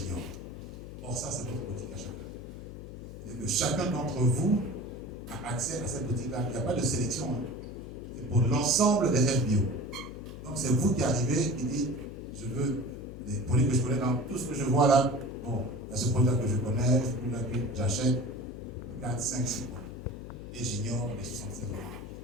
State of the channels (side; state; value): left; noise; hum, 12 dB below the sound